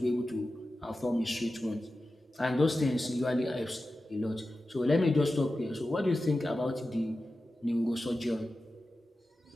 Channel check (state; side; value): normal; both; correlation 0.93